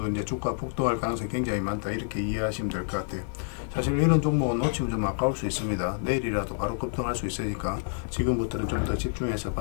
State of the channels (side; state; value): right; silent; 59 dB below the other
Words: 이제 주가 폭등할 가능성이 굉장히 많다, 이렇게 이해하시면 될 것 같아요. 사실 이런 종목은 놓치면 좀 아까울 수 있습니다. 내일이라도 바로 급등할 수 있으니까 지금부터는 좀 더 집중해서